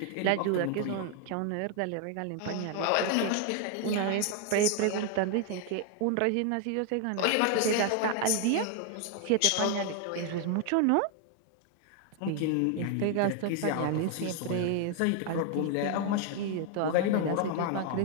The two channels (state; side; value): different; both; correlation 0.00